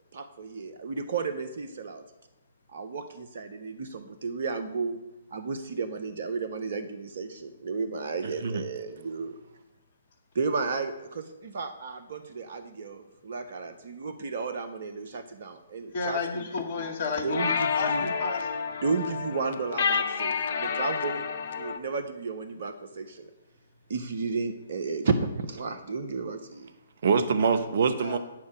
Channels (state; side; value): inverted; both; correlation -0.66